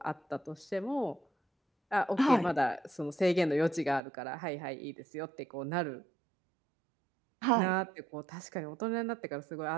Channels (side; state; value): left; drops out; at 4.0 s